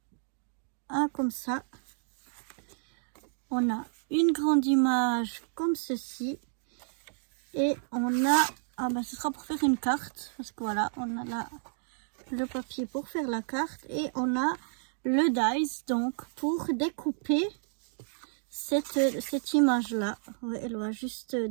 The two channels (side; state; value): left; silent; digital silence